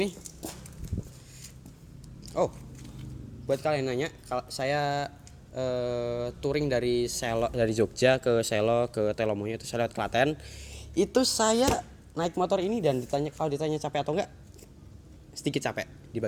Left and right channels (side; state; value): both; identical; correlation 1.00